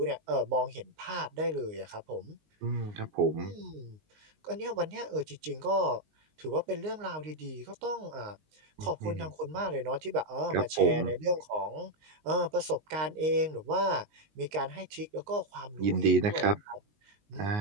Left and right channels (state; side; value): late; left; 19 ms